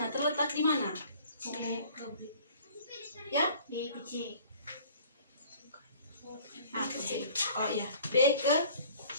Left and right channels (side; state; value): both; inverted; correlation -0.50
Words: Terletak di mana? Ya? B ke C. A ke C. Oh iya, B ke